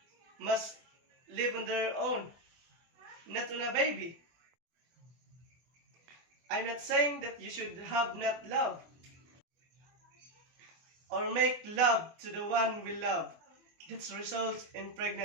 must live on their own, not on a baby. I'm not saying that you should have not love or make love to the one we love that results in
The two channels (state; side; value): late; left; 24 ms